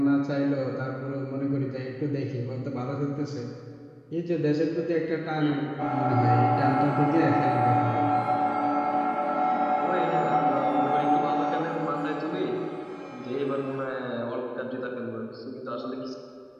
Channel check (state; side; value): identical; both; correlation 1.00